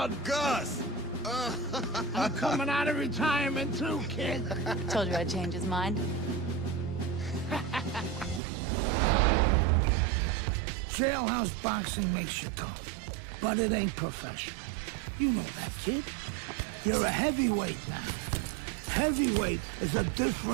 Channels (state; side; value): drops out; left; at 8.4 s